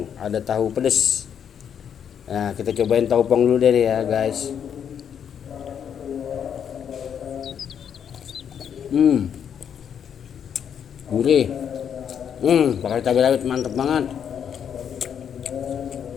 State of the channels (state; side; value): quieter; right; 8.3 dB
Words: ada tahu pedes. Nah kita cobain tahu pong dulu deh ya guys. Gurih. Pakai cabai rawit mantep banget.